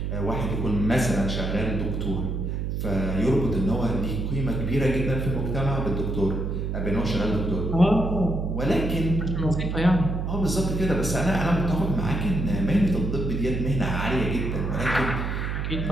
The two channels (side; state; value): right; noise; hum, 2 dB below the sound